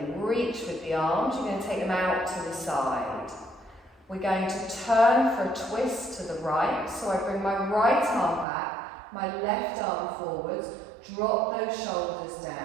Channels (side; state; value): left; drops out; at 8.5 s